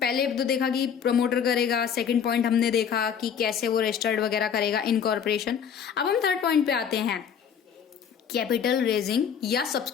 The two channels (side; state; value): right; quieter; 7.7 dB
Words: पहले तो देखा कि प्रमोटर करेगा, सेकंड पॉइंट हमने देखा कि कैसे वो रजिस्टर्ड वगैरह करेगा इनकॉर्पोरेशन। अब हम थर्ड पॉइंट पे आते हैं, कैपिटल रेजिंग या